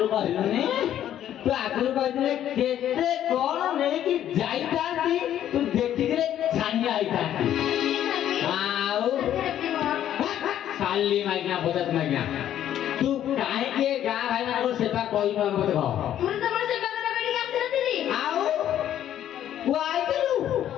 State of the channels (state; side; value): quieter; right; 11.1 dB